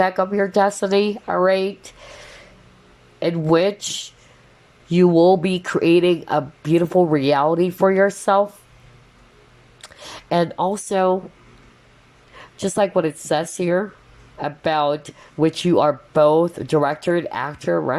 of your destiny, all right? In which you will be creating a beautiful reality for yourself. And also, just like what it says here, about which you are both director and actor,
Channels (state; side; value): identical; both; correlation 1.00